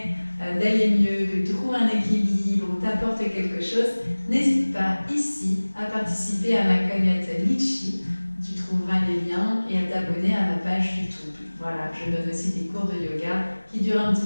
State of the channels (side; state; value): both; inverted; correlation -1.00